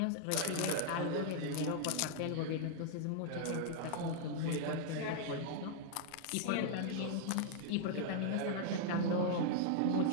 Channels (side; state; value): both; different; correlation -0.01